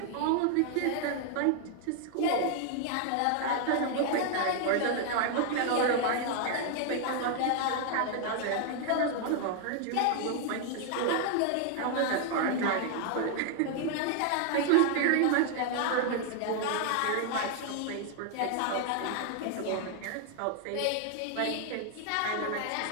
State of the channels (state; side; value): different; both; correlation 0.00